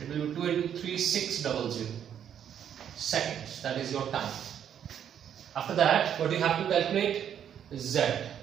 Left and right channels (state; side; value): quieter; left; 9.2 dB